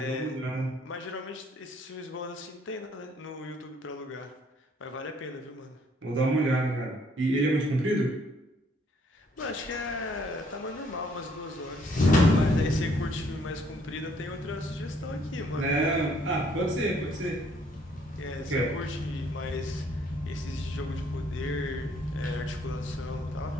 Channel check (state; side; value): normal; both; correlation 0.65